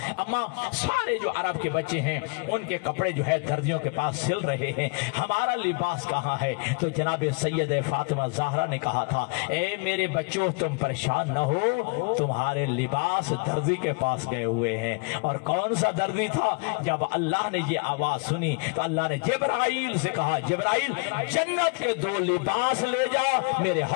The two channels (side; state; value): right; quieter; 33.0 dB